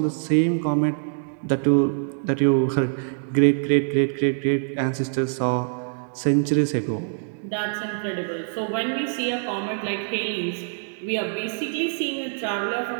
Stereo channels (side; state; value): left; silent; digital silence